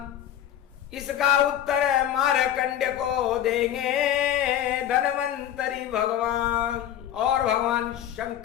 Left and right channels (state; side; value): quieter; right; 10.8 dB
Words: इसका उत्तर मारकंड को देंगे धनवंतरी भगवान। और भगवान